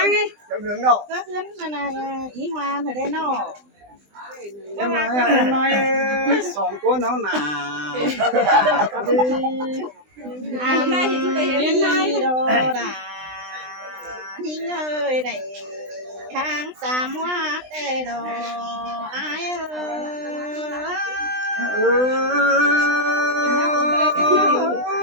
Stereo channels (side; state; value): left; late; 20 ms